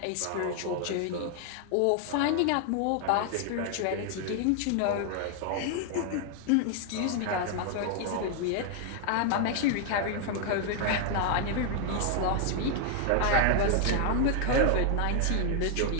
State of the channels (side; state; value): both; different; correlation 0.00